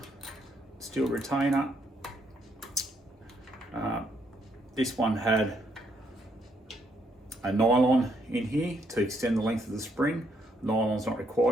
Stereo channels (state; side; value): normal; both; correlation 0.73